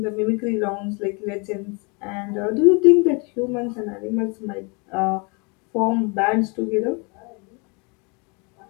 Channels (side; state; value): right; quieter; 31.7 dB